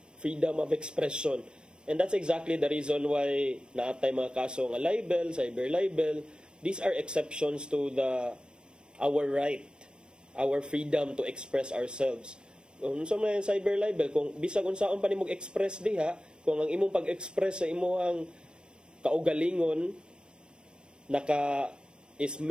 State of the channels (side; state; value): left; late; 0.053 ms